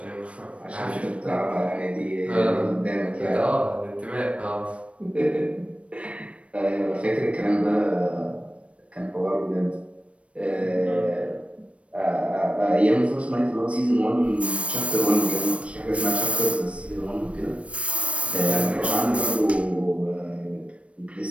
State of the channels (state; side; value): late; left; 0.062 ms